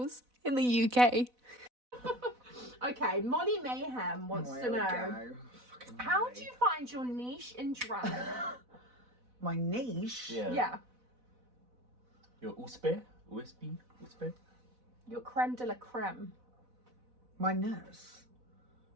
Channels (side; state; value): left; late; 4.0 ms